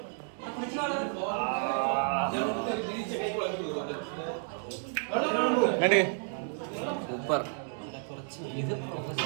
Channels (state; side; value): silent; left; 57 dB below the other